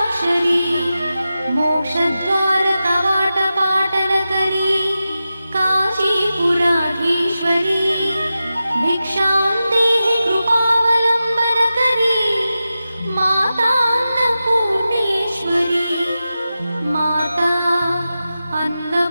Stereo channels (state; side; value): inverted; both; correlation -0.93